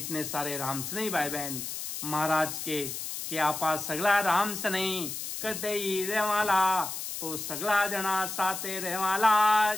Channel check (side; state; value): left; noise; hiss, 6 dB below the sound